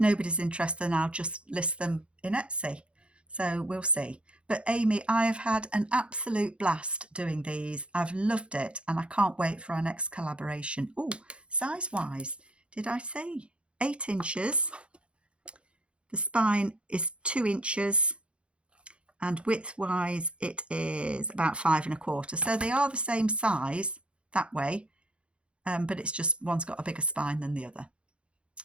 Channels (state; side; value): late; left; 0.058 ms